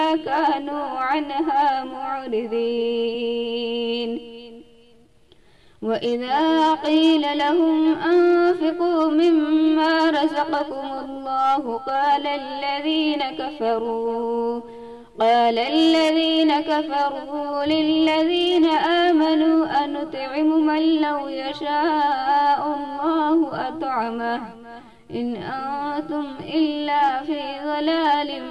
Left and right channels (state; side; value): identical; both; correlation 1.00